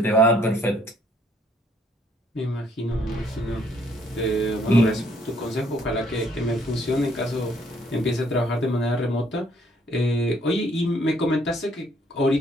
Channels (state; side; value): normal; both; correlation 0.65